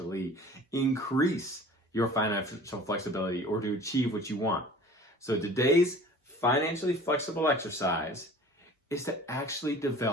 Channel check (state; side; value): normal; both; correlation 0.44